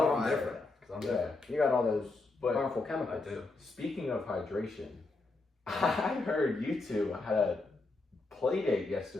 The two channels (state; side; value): quieter; right; 3.4 dB